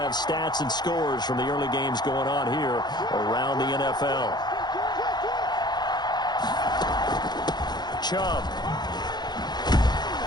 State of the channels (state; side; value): late; right; 0.21 ms